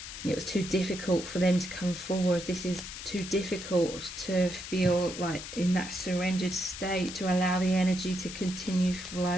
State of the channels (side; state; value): left; noise; hiss, 10 dB below the sound